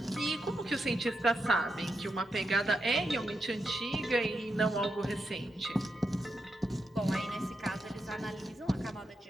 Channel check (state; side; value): normal; both; correlation 0.85